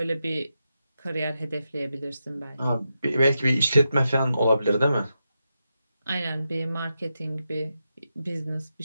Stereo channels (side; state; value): both; inverted; correlation -0.87